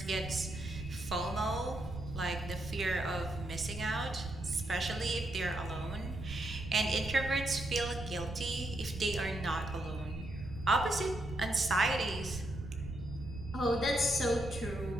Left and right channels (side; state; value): right; noise; rumble, 9 dB below the sound